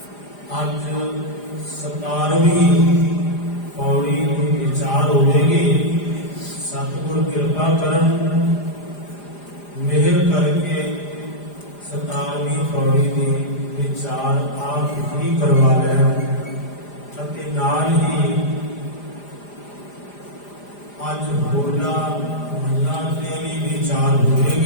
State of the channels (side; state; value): right; late; 4.9 ms